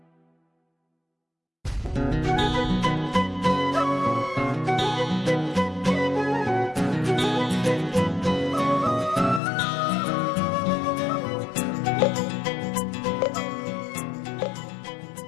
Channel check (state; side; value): drops out; right; at 9.4 s